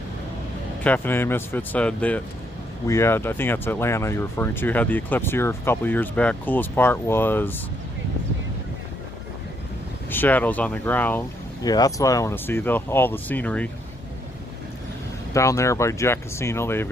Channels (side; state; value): both; normal; correlation 0.73